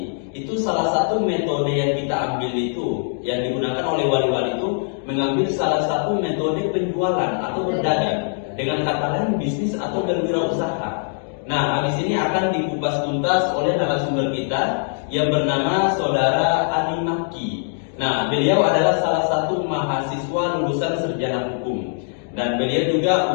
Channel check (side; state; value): right; silent; digital silence